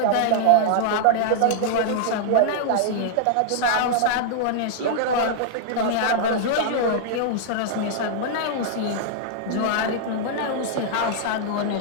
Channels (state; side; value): different; both; correlation -0.01